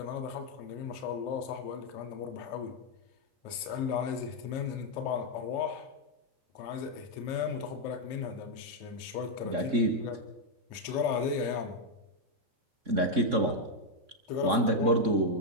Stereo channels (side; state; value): left; late; 2.9 ms